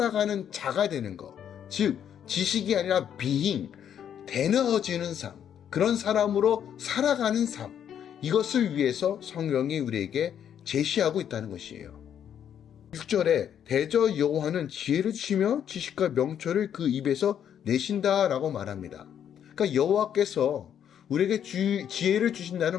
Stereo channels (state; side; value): quieter; right; 9.2 dB